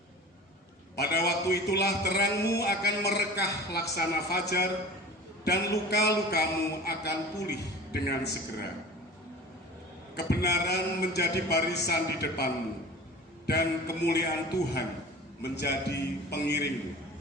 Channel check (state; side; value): normal; both; correlation 0.40